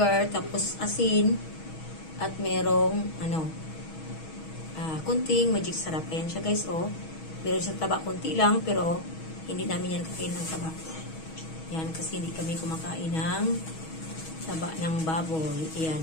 tapos asin, at merong kunting magic sarap. Ayan siya guys, oh. Meron siya taba, kunti lang, pero hindi namin yan kakain ng taba. Yan, kasi hindi kami kumakain ng taba ng baboy. Ayan,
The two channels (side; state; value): right; late; 6.3 ms